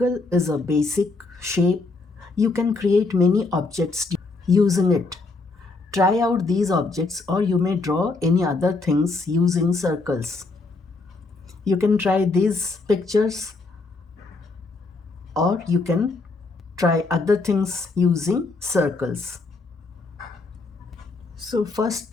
is a basic shape. You can create many objects using it. Try out these objects or you may draw any other things using circles. You can try these pictures or you can try other things using circles. So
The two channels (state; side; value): quieter; right; 3.7 dB